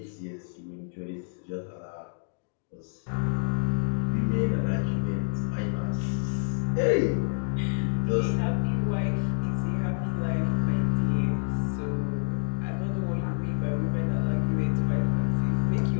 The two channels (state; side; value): silent; right; digital silence